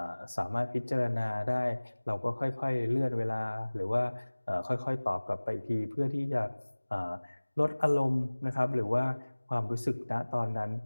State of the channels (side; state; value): both; inverted; correlation -1.00